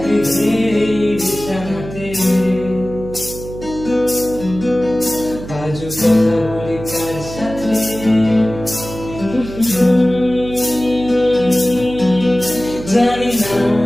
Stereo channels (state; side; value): noise; right; hum, 12 dB below the sound